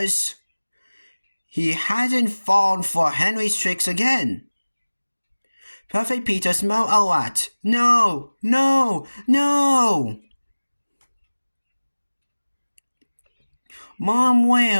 He hadn't fallen for Henry's tricks again. Perfect Peter smelled a rat. "No, no, no!" Mom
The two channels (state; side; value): inverted; both; correlation -1.00